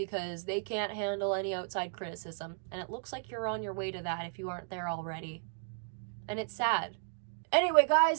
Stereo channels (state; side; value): silent; left; digital silence